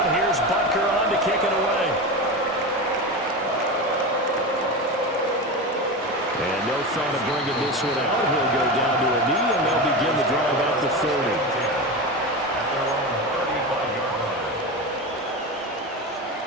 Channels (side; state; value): both; normal; correlation 0.22